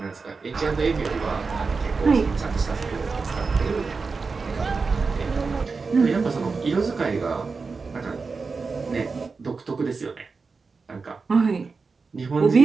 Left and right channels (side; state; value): left; quieter; 4.5 dB